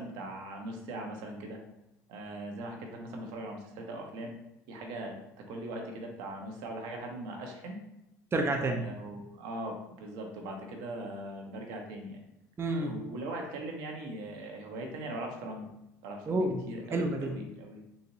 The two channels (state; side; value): normal; both; correlation 0.54